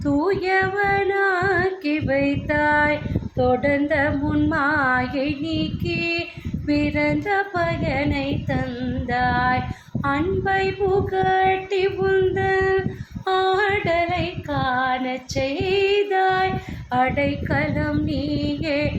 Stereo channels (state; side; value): identical; both; correlation 1.00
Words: தூயவனாக்கி வைத்தாய் தொடர்ந்த முன்மாயை நீக்கி பிறந்த பயனை தந்தாய் அன்பை புகட்டி உந்தன் ஆடலை காணச் செய்தாய் அடைக்கலம் நீயே